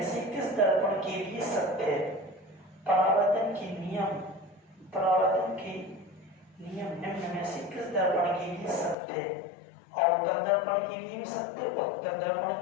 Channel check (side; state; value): right; drops out; at 9.0 s